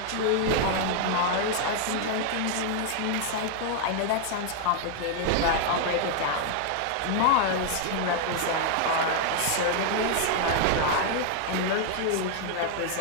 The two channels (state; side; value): different; both; correlation 0.00